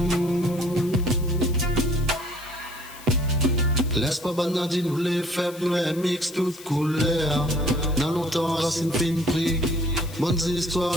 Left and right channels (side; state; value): left; noise; hiss, 18 dB below the sound